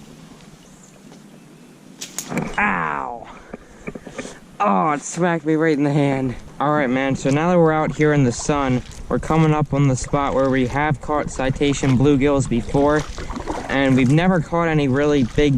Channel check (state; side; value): identical; both; correlation 1.00